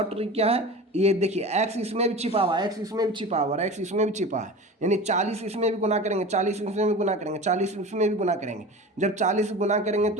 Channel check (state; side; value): normal; both; correlation 0.33